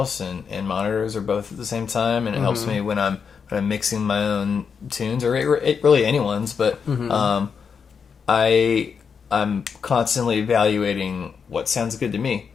and monitors are both at the same time, and it helps me when I'm mixing my own tunes or really anyone's. But I'm constantly evaluating what sounds good to me,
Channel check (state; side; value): quieter; right; 6.3 dB